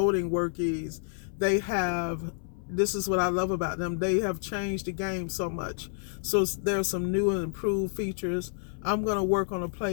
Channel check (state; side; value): silent; right; 58 dB below the other